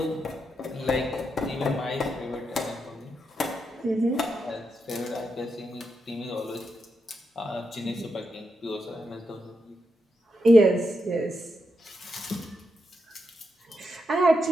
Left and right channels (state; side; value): normal; both; correlation 0.84